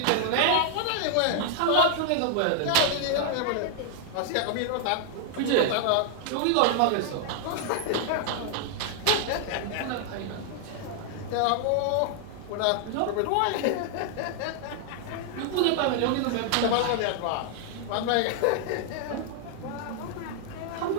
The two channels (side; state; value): both; different; correlation 0.00